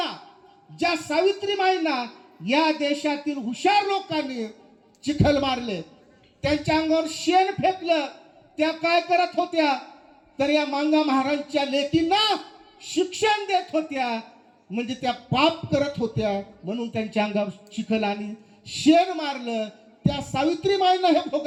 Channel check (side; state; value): both; identical; correlation 1.00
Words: ज्या सावित्रीबाईंना या देशातील हुशार लोकांनी चिखल मारले, त्यांच्या अंगावर शेण फेकलं, त्या काय करत होत्या, तर या मांगा महाराजांच्या लेकींना शिक्षण देत होत्या, म्हणजे त्या पाप करत होत्या. म्हणून त्यांच्या अंगावर चिखल आणि शेण मारलं. त्या सावित्रीबाईंना हे